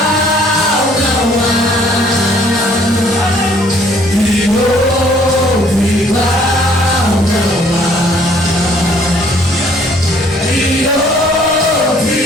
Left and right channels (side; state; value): both; normal; correlation 0.60